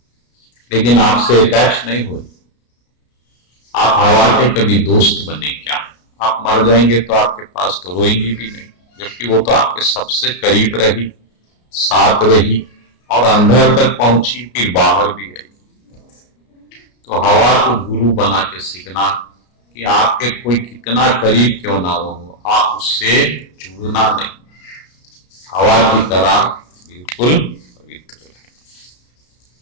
लेकिन आपसे अटैच नहीं हो रही। आप हवा के कभी दोस्त बने क्या? आप मर जाएंगे तो आपके पास तो रोएंगी भी नहीं, जबकि वो तो आपके सबसे करीब रही, साथ रही, और अंदर तक पहुंची, फिर बाहर भी आई। तो हवा को गुरु बना के सीखना कि आपके कोई कितना करीब क्यों ना हो, आप उससे जुड़ना नहीं, हवा की तरह बिल्कुल पवित्र रहे।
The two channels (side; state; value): right; late; 33 ms